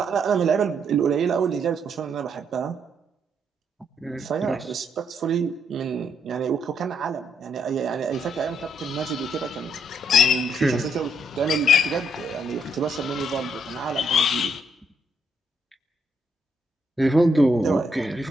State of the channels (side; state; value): both; normal; correlation 0.73